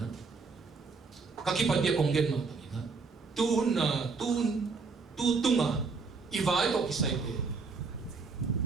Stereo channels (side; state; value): left; quieter; 4.6 dB